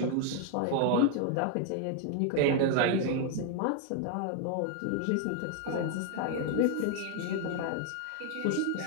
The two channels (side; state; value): both; different; correlation 0.00